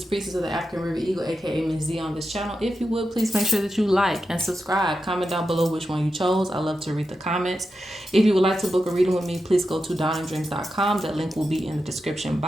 Priestess of the African River Eagle, aka Ms.Z on this channel. If you would, please make sure that you like and subscribe. Comment down below which one you chose. I love to read the comments. If you would like to book a reading with me, please go to dawnanddreams.com. That link will be in the description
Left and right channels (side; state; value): both; normal; correlation 0.89